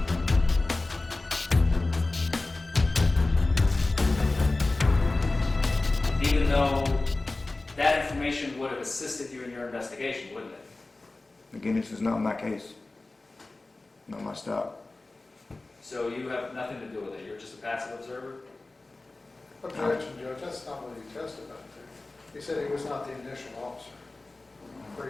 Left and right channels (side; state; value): right; quieter; 3.1 dB